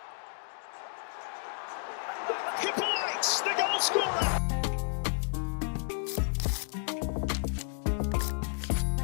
Hippolyte, the goal scorer!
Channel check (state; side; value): silent; right; digital silence